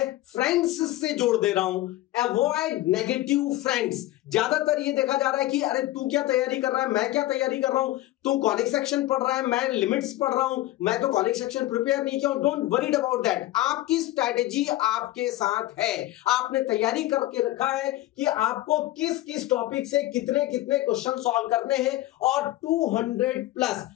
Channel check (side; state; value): right; quieter; 16.3 dB